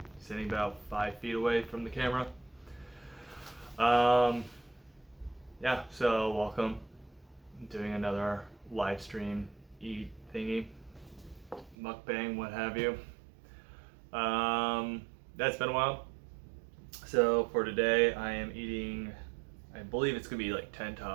sitting about 5 feet away from the camera. Yeah, so welcome. I'm doing another live stream eat thingy, mukbang, what have you. That's been a while. So for today, I am eating, I believe it's gonna be like 10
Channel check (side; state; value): left; drops out; at 11.8 s